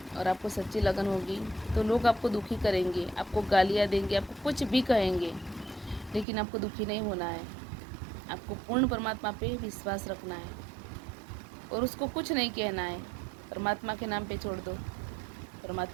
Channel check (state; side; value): drops out; left; at 6.2 s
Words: और आपको सच्ची लगन होगी तो लोग आपको दुखी करेंगे, आपको गालियाँ देंगे, आपको कुछ भी कहेंगे, लेकिन आपको दुखी नहीं होना है। आपको पूर्ण परमात्मा पे विश्वास रखना है और उसको कुछ नहीं कहना है। परमात्मा के नाम पे छोड़ दो,